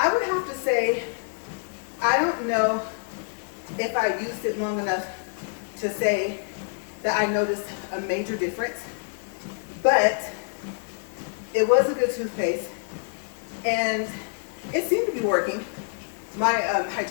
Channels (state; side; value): silent; right; digital silence